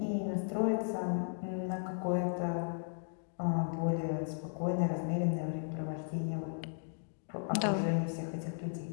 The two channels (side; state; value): right; silent; digital silence